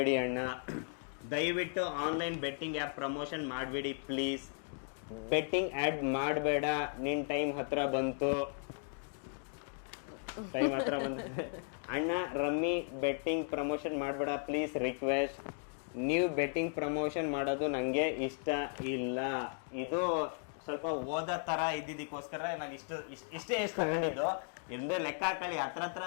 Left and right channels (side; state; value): right; silent; 54 dB below the other